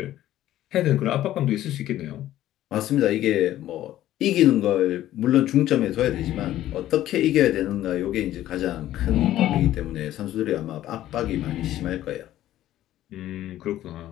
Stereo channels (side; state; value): right; quieter; 13.5 dB